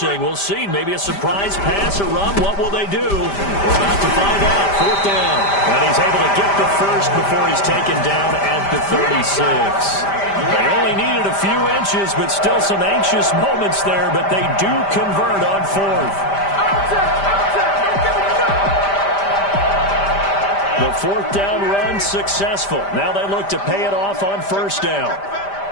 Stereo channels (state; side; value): late; right; 5.1 ms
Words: We'll see. Maybe a surprise pass or run. What will they do? We're about to find out. 4th down. And he's able to get the first before he's taken down at the 36. They only needed a few inches, but still some anxious moments there, but they do convert on 4th. The 4th down run successful. Now they look to pay it off on 1st down.